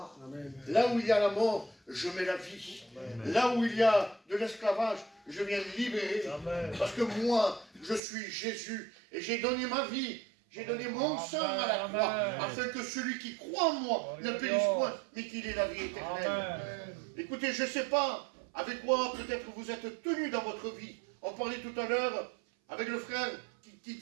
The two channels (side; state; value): left; drops out; at 8.0 s